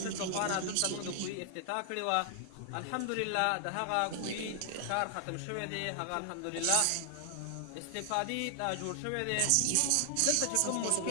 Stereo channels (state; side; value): different; both; correlation 0.00